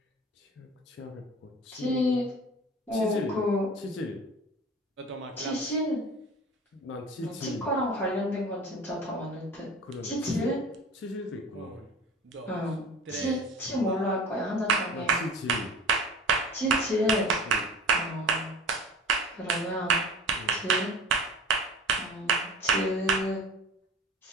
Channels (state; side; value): normal; both; correlation 0.37